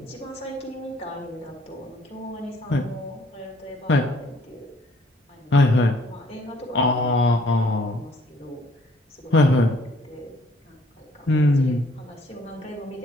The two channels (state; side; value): normal; both; correlation 0.61